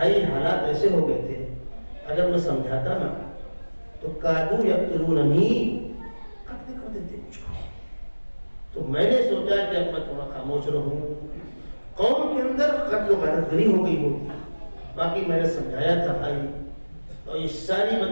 حالات ایسے ہو گئے تھے، اگر میں سمجھاتا نا تو کادو یقتلوننی، قتل کر دیتے مجھ کو. تو میں نے سوچا کہ اب میں تھوڑا خاموش رہوں. قوم کے اندر قتل و غارت گری ہو گئی ہوتی، باقی میں نے سمجھایا تھا بھائی، اور یہ ساری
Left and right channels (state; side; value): inverted; both; correlation -1.00